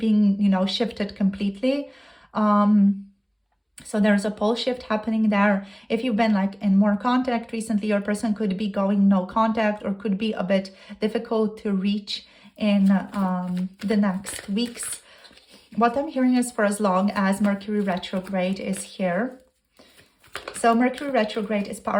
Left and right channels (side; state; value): both; identical; correlation 1.00